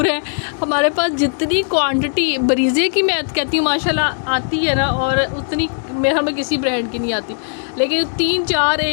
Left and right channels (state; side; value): silent; right; digital silence